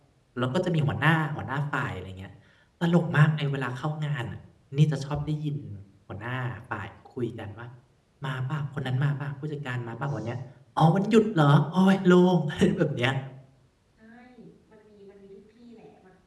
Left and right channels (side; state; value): both; identical; correlation 1.00